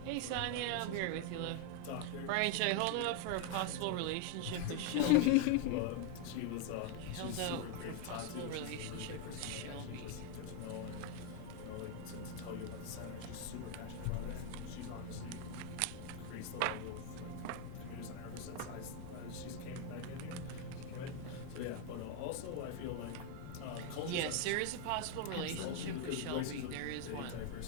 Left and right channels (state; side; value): different; both; correlation 0.01